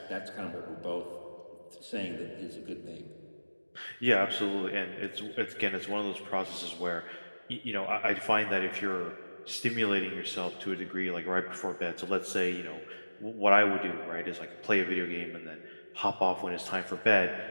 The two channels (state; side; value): inverted; both; correlation -1.00